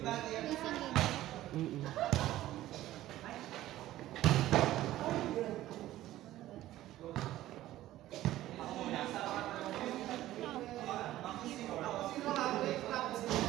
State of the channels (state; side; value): quieter; left; 14.7 dB